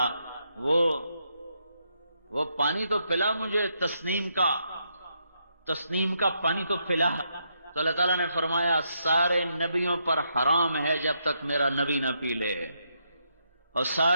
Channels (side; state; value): both; inverted; correlation -0.79